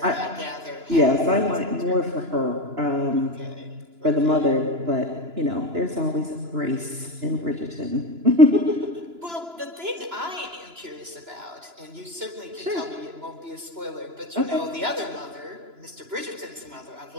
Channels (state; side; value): late; left; 2.9 ms